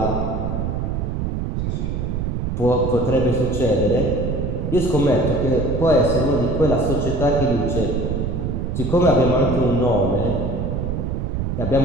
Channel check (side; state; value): right; noise; rumble, 2 dB below the sound